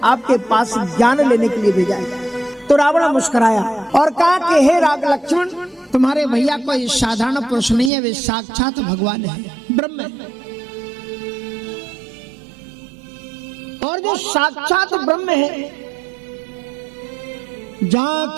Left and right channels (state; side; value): drops out; left; at 7.9 s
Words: आपके पास ज्ञान लेने के लिए भेजा है। तो रावण मुस्कुराया और कहा कि हे राग लक्ष्मण, तुम्हारे भैया कोई साधारण पुरुष नहीं है, वे साक्षात भगवान है, ब्रह्म है। और जो साक्षात ब्रह्म है,